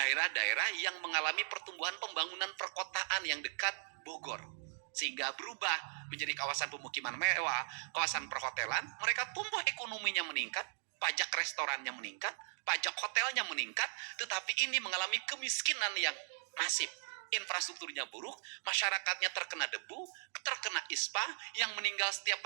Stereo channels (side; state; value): left; silent; digital silence